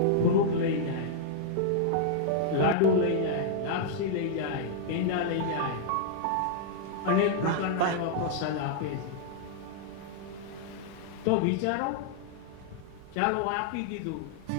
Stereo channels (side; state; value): both; different; correlation -0.02